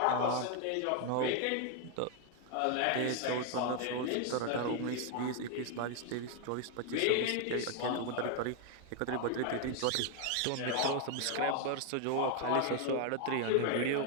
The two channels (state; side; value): different; both; correlation 0.00